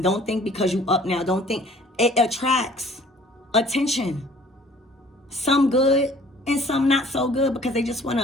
Don't think because you up now. Don't think. It attracts attention. Some good and some not so good, because they just want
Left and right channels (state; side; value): normal; both; correlation 0.53